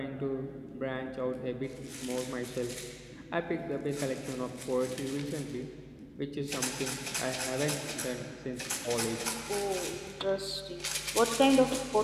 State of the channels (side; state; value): both; identical; correlation 1.00